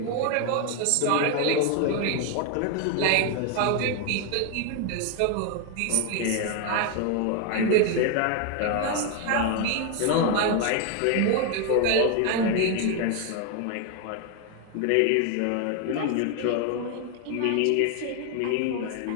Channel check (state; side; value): different; both; correlation 0.01